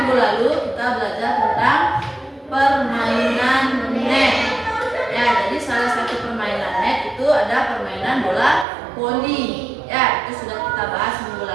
lalu kita belajar tentang permainan net. Ya, jadi salah satu permainan net itu ada permainan bola voli. Ya, itu sudah kita bahas minggu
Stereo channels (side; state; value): left; drops out; at 8.7 s